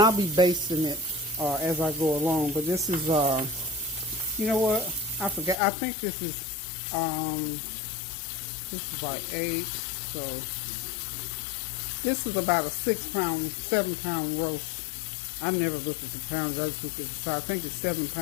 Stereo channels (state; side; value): drops out; right; at 5.6 s